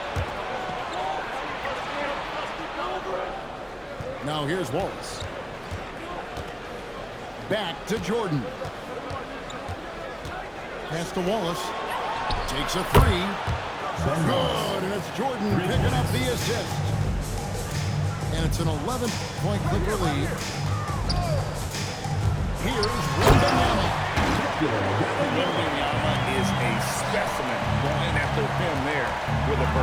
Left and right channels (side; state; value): both; identical; correlation 1.00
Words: Now here's Wallace. Back to Jordan. Pass to Wallace. Takes a 3. Good, and it's Jordan picking up the assist. And it's an 11-point Clipper lead. Here's Wembanyama. Wembanyama is a specimen going after him there with a